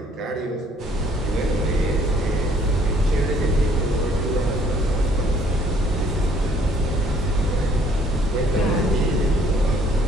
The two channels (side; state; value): both; normal; correlation 0.62